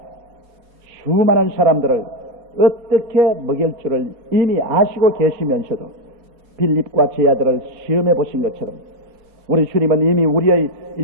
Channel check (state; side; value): late; left; 4.7 ms